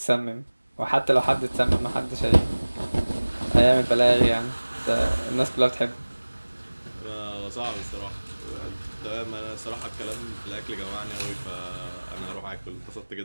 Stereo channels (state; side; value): inverted; both; correlation -1.00